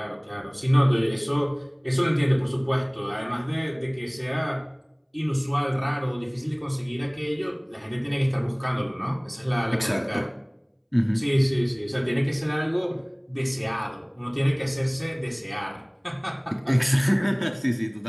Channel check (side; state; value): both; identical; correlation 1.00